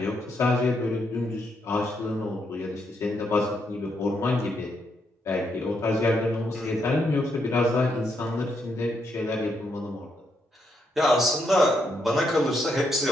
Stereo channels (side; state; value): both; normal; correlation 0.78